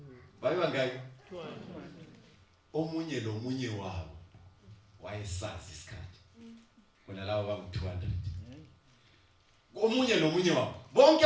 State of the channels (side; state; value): both; identical; correlation 1.00